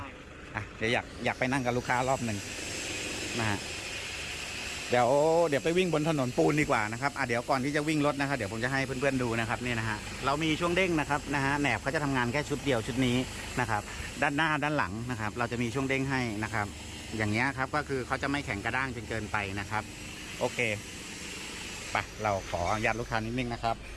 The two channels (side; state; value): both; identical; correlation 1.00